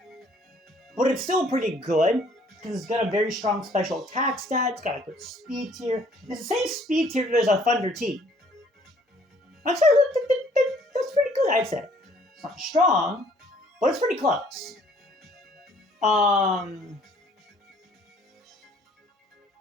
but it's still pretty good because it's got a very strong special attack stat. It's got a good speed tier. It's the same speed tier as a Thunder T. That's pretty good, I'd say. It's not strong, but it's pretty close.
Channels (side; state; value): both; normal; correlation 0.60